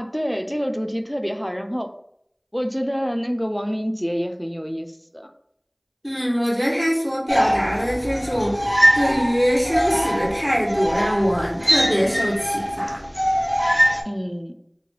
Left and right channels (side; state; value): both; identical; correlation 1.00